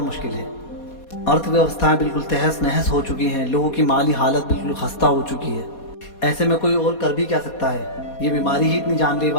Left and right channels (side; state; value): right; late; 4.2 ms